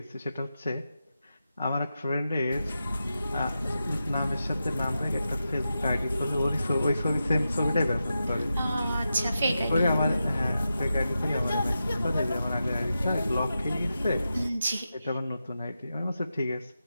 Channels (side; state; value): both; inverted; correlation -0.90